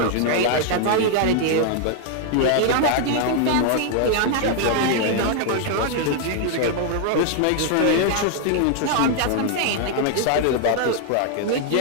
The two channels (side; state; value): both; different; correlation 0.00